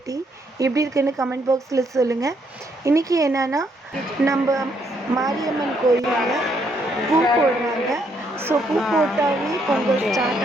எப்படி இருக்குன்னு கமெண்ட் பாக்ஸில் சொல்லுங்கள். இன்றைக்கி என்னென்னா, நம்ம மாரியம்மன் கோயிலில் பூ போடுறாங்க. ஸோ பூ போட்டாவே பொங்கல்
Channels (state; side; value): normal; both; correlation 0.72